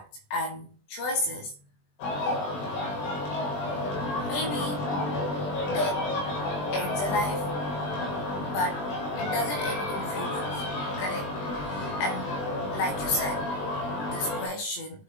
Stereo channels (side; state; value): right; late; 20 ms